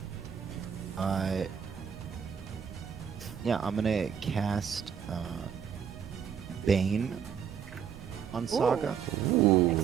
Yeah, I'm gonna cast Bane on Saga. Ooh.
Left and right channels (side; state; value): left; quieter; 7.7 dB